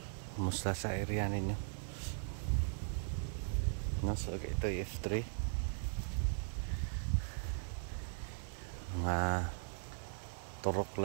Kumusta sa area ninyo? No, so ito yung F3. Mga turok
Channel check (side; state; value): left; silent; 52 dB below the other